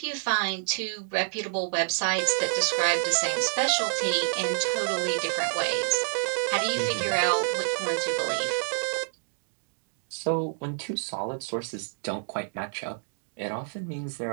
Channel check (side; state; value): left; silent; digital silence